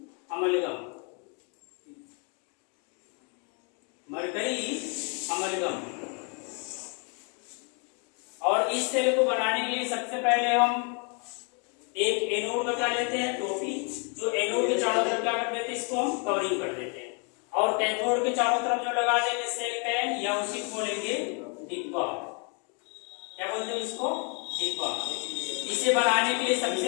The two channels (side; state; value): right; quieter; 36.3 dB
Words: amalgam, mercury amalgam. और इस सेल को बनाने के लिए सबसे पहले हम एक एनोड का क्या लेते हैं, टोपी, जो एनोड के चारों तरफ क्या कर देते हैं, इसको हम कवरिंग कर देते हैं। और कैथोड के चारों तरफ जो लगा देंगे सेल पैन, या उसी को बोलेंगे डिब्बा, क्या बोलते हैं इसको, डिब्बा। इसे बनाने के लिए